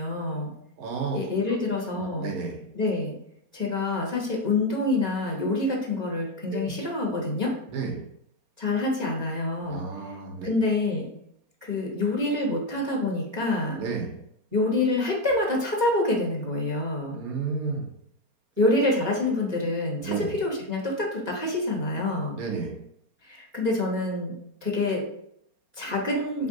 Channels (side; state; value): left; late; 4.3 ms